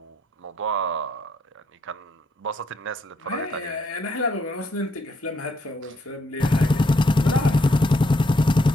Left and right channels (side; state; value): both; normal; correlation 0.74